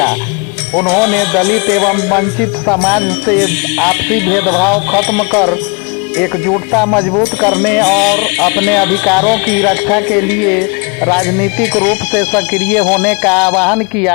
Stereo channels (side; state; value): right; quieter; 32.6 dB